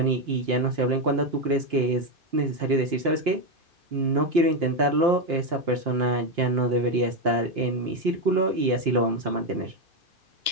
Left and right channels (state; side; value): late; left; 2.9 ms